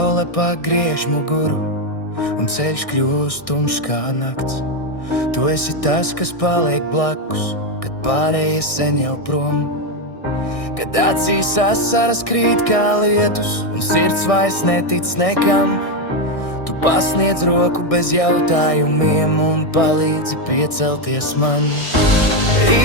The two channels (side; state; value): right; late; 1.6 ms